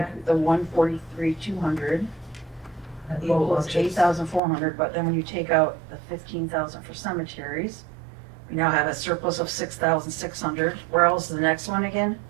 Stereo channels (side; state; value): left; drops out; at 4.4 s